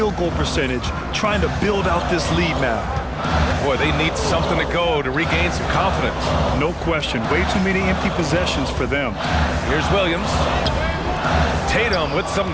goal percentage, trying to build out this lead now. Boy, they need something to go to regain some confidence. No question. Way too many empty possessions for them. Here's Williams. Tatum with some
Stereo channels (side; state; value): both; identical; correlation 1.00